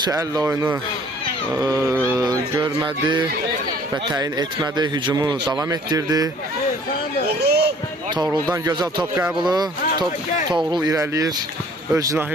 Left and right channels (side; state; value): both; normal; correlation 0.54